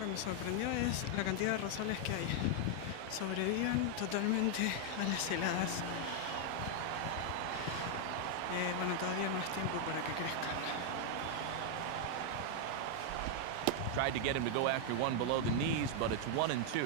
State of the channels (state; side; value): different; both; correlation 0.00